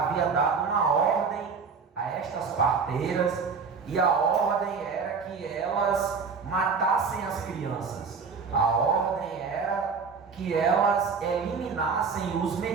dado uma ordem a estas parteiras, e a ordem era que elas matassem as crianças. A ordem era que elas eliminassem os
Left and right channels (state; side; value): quieter; left; 5.4 dB